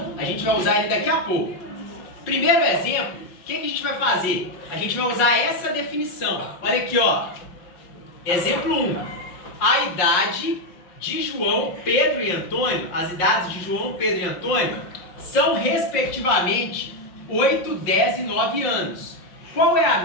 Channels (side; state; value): right; late; 5.6 ms